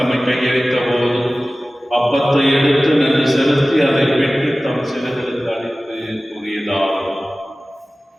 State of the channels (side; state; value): both; normal; correlation 0.97